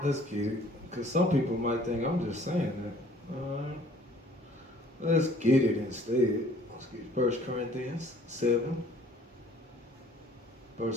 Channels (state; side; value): normal; both; correlation 0.55